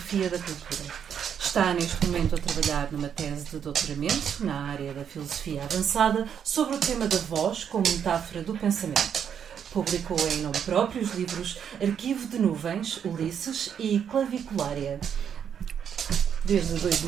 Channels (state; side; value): quieter; left; 8.2 dB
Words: da Cultura. Está neste momento a trabalhar numa tese de doutoramento na área da filosofia avançada sobre o tema da voz como metáfora do pensamento. Publicou em nome próprio os livros Arquivo de Nuvens, Ulisses e Claviculária. Desde